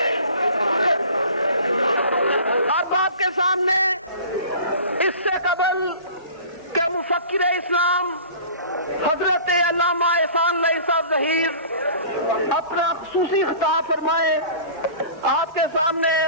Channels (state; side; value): inverted; both; correlation -0.43